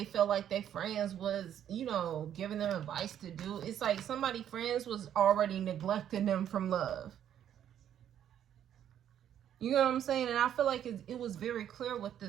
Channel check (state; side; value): quieter; left; 10.1 dB